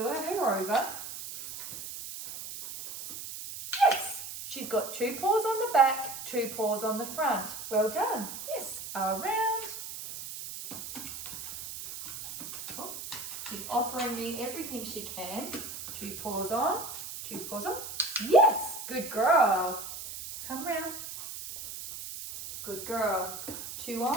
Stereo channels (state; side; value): noise; right; hiss, 9 dB below the sound